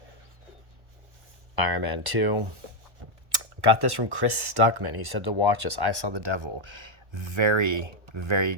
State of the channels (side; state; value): left; late; 1.1 ms